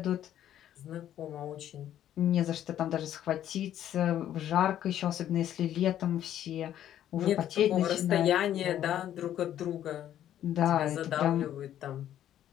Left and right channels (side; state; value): right; quieter; 11.3 dB